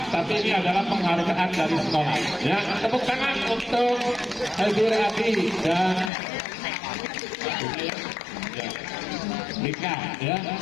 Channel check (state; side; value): drops out; right; at 6.1 s